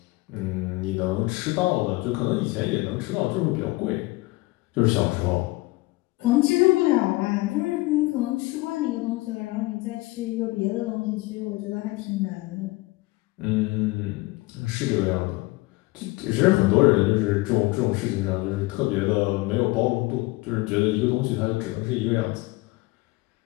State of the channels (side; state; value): right; quieter; 21.5 dB